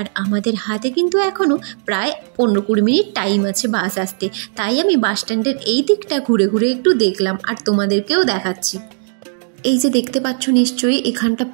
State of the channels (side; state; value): left; silent; digital silence